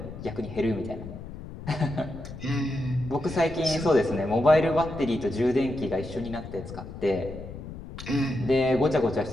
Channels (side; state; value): left; noise; rumble, 12 dB below the sound